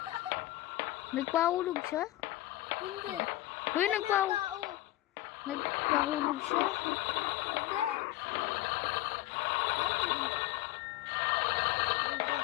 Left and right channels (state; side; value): quieter; right; 16.3 dB